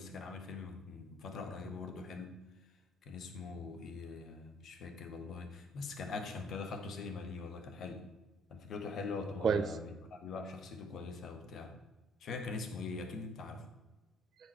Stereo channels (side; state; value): both; normal; correlation 0.62